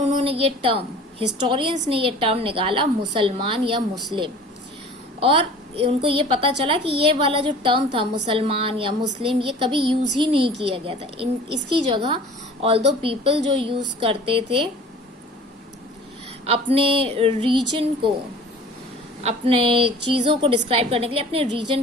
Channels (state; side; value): normal; both; correlation 0.45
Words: ये टर्म, हिस्टोरियंस ने ये टर्म निकाला मुसलमान या मुस्लिम। और उनको ये पता चला कि ये वाला जो टर्म था मुसलमान या मुस्लिम, ये कभी यूज ही नहीं किया गया था। इसकी जगह ऑल्दो पीपल जो यूज करते थे अपने रीजन को, अपने चीज़ों को डिस्क्राइब करने के लिए अपने रीजन